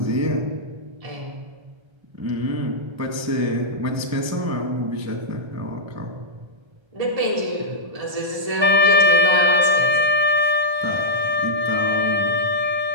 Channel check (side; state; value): left; late; 1.3 ms